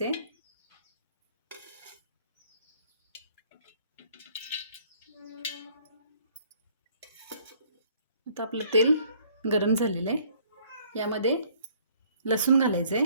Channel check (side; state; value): both; inverted; correlation -0.60